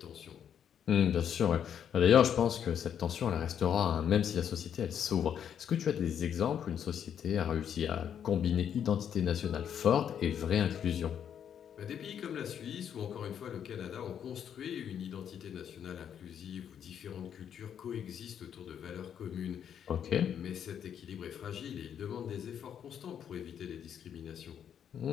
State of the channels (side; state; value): right; quieter; 8.8 dB